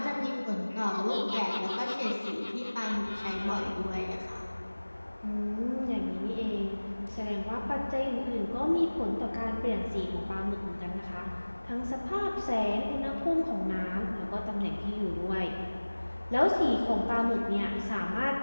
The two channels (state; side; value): inverted; both; correlation -1.00